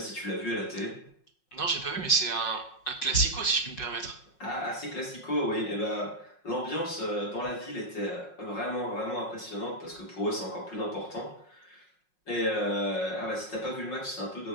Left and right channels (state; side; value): late; right; 5.5 ms